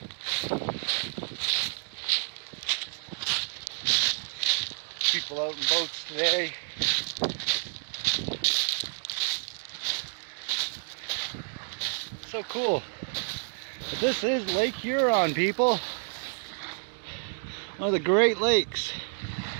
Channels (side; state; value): left; silent; digital silence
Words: People out in boats today. So cool. But this is Lake Huron, people. One of the Great Lakes.